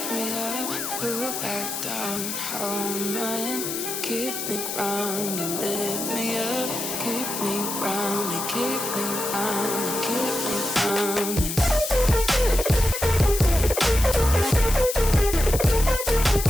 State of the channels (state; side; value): noise; left; hiss, 4 dB below the sound